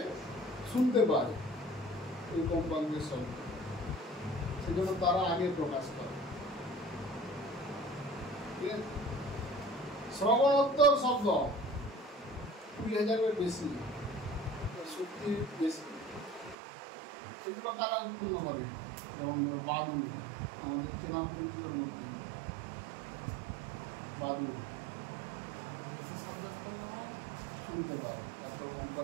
শুনতে পায়, ওই কম্পাঙ্কের শব্দ। সেই জন্য তারা আগে প্রকাশ করে। শ্রবণোত্তর শব্দ 20,000-এর বেশি, শক্তি বেশি। এগুলো কারা উৎপন্ন করে? যেমন বাদু, আমাদের চেনা পরিচিতের মধ্যে বাদু শুনতে পায়, তারপর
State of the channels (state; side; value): drops out; left; at 16.6 s